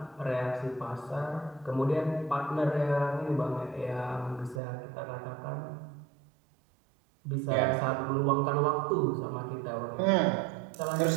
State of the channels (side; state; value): left; drops out; at 4.6 s